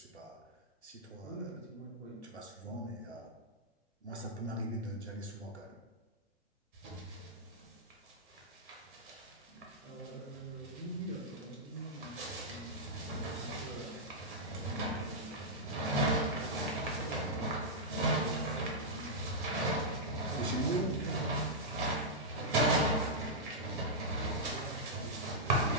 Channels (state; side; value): normal; both; correlation -0.10